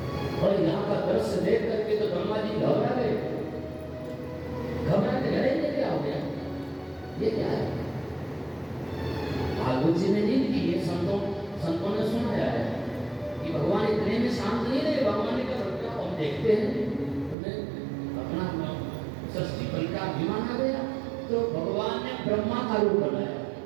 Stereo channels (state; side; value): drops out; left; at 17.4 s